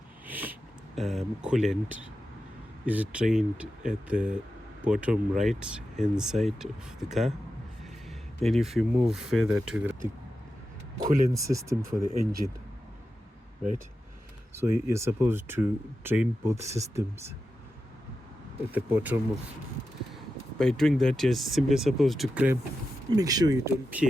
coolant is drained at the bottom right hand side of the car. And if you move further to the coolant system for the engine, right? So you're supposed to drain both systems at the bottom of. By doing that, you're simply supposed to make sure you don't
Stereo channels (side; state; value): both; normal; correlation 0.90